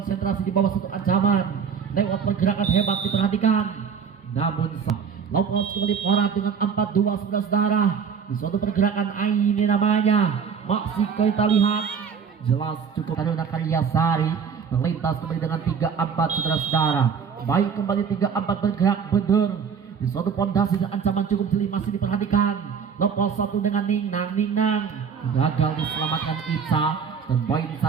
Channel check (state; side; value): quieter; left; 6.6 dB